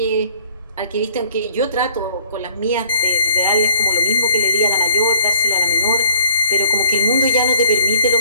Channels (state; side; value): inverted; both; correlation -0.57